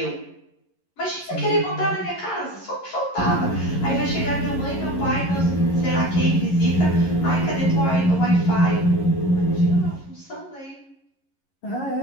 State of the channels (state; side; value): late; right; 11 ms